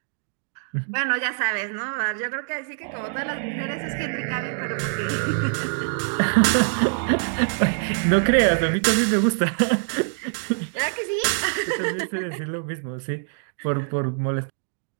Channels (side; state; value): left; silent; digital silence